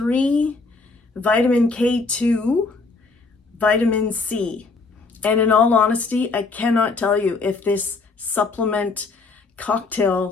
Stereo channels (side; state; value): right; quieter; 4.0 dB